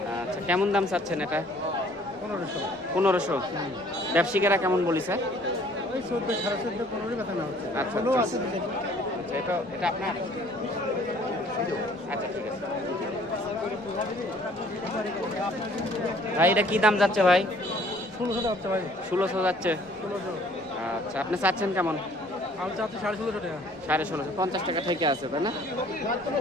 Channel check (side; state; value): both; normal; correlation 0.57